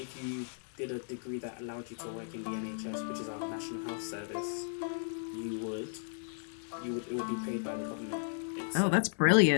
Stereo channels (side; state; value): right; silent; 54 dB below the other